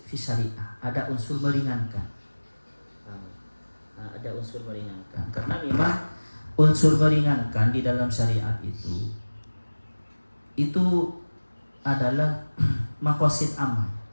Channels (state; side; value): inverted; both; correlation -1.00